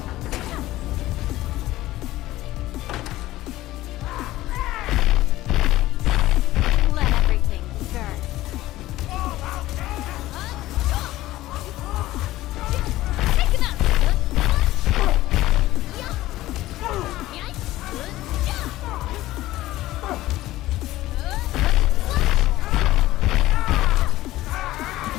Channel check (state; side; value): quieter; right; 16.3 dB